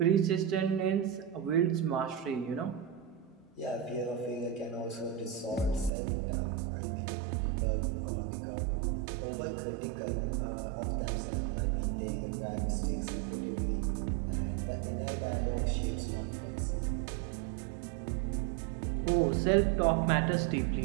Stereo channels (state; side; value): drops out; left; at 5.9 s